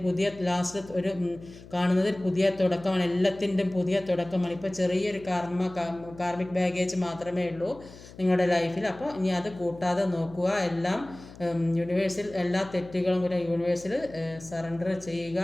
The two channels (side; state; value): left; noise; hum, 19 dB below the sound